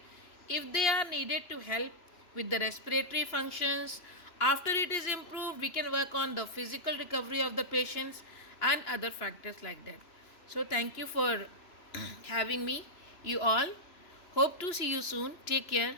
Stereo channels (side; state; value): right; late; 3.0 ms